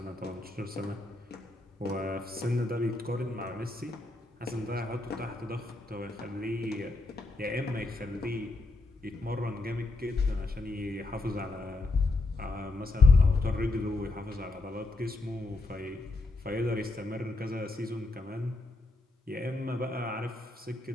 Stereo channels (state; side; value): quieter; right; 3.0 dB